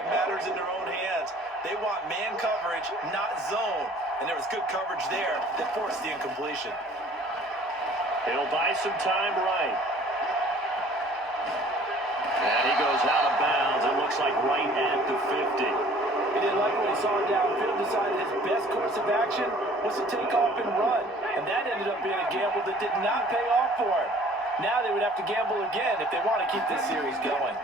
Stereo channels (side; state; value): both; normal; correlation 0.52